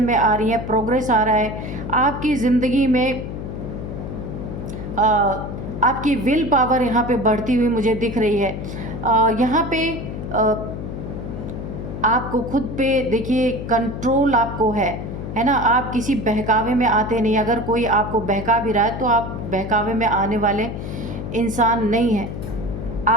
में आ रही हैं, प्रोग्रेस आ रहा है आपकी ज़िंदगी में। आपकी विल पावर यहाँ पे बढ़ती हुई मुझे दिख रही है। यहाँ पे आपको खुद पे देखिए कंट्रोल आपको है ना। आप किसी बहकावे में आते नहीं, अगर कोई आपको बहका भी रहा है तो आप बहकावे में आने वाले इंसान नहीं हैं।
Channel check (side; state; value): left; noise; hum, 7 dB below the sound